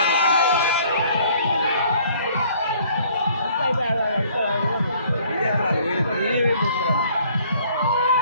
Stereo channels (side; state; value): both; inverted; correlation -0.58